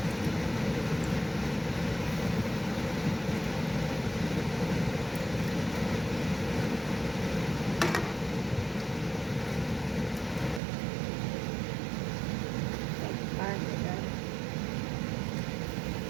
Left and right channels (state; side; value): drops out; left; at 10.6 s